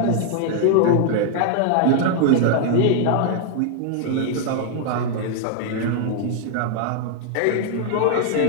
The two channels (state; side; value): different; both; correlation 0.00